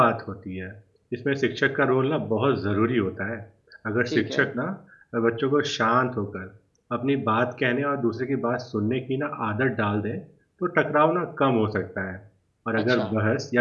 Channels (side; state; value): both; identical; correlation 1.00